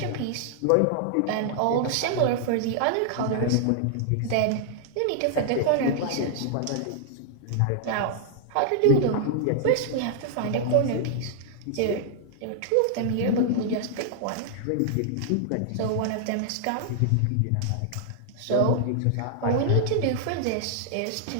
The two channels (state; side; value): different; both; correlation -0.01